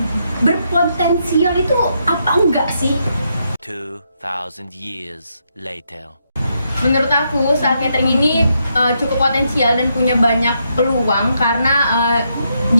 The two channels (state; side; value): inverted; both; correlation -0.79